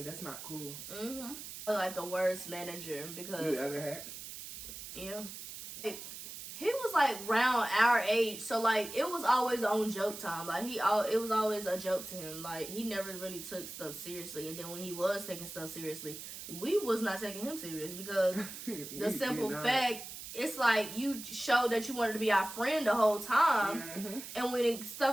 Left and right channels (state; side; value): noise; right; hiss, 10 dB below the sound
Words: That's not cool. The worst manager because you ever had? Yeah. He was around our age, so it was always on joke time. It was always a joke to him. He never really took stuff seriously, and then when he was taking stuff seriously, we was not taking him serious because the simple fact, it's you showed that you wanted to be our friend the whole time, and when